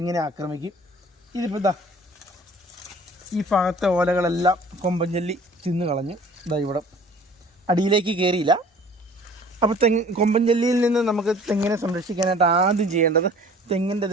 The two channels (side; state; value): both; normal; correlation 0.49